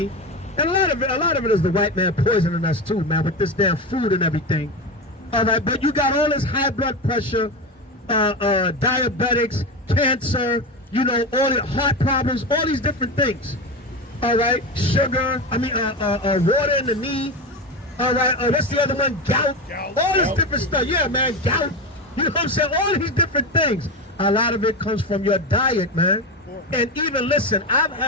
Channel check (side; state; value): both; normal; correlation 0.20